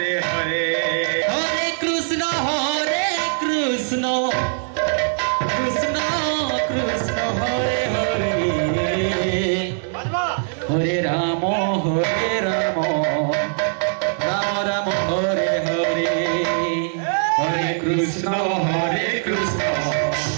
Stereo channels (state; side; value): silent; left; digital silence